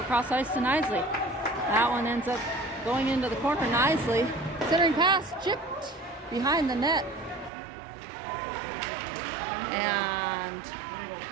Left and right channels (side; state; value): left; drops out; at 7.5 s